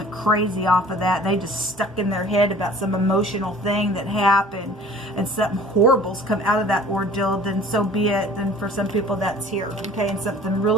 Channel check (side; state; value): both; normal; correlation 0.48